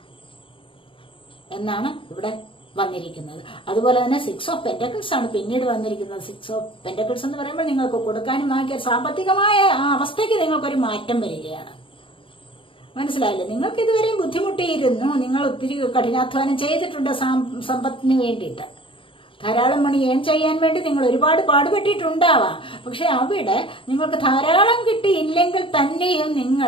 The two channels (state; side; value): late; right; 0.25 ms